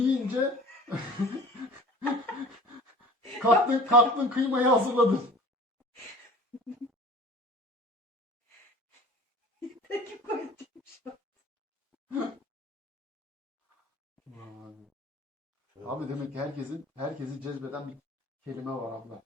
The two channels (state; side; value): normal; both; correlation 0.44